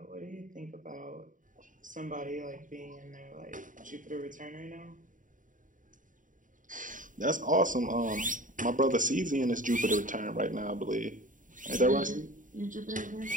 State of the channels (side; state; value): left; late; 0.38 ms